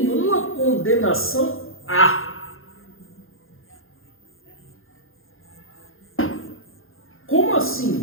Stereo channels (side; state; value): right; late; 0.60 ms